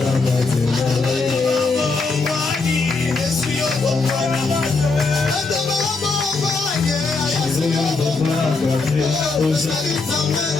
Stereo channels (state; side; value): quieter; right; 3.9 dB